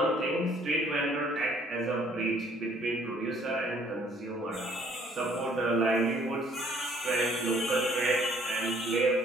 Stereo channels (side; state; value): both; normal; correlation 0.61